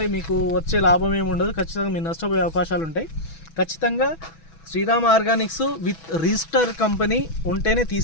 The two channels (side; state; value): right; late; 6.1 ms